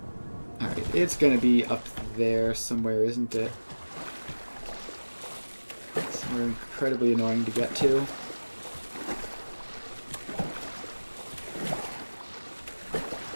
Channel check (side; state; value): both; inverted; correlation -1.00